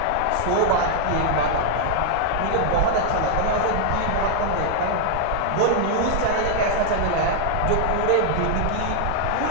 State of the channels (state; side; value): different; both; correlation 0.00